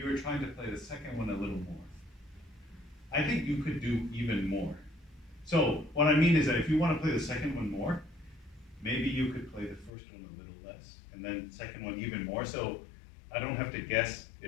were trying to play the second one a little more. I think you could do even more. So what I mean is that if you want to play the second one more, maybe you could play the first one a little less, and then second one even more. So I don't have to guess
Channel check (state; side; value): drops out; right; at 9.9 s